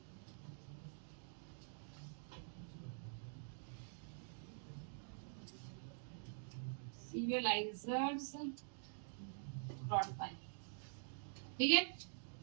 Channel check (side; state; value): left; silent; digital silence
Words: serializers डॉट पाई। ठीक है,